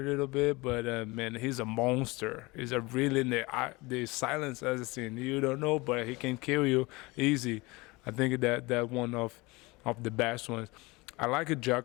bit, but man, he's a monster. He's a really the Silent Assassin. You don't know, but he can kill you easy. I think that one of the best ones. I like a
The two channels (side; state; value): right; quieter; 23.8 dB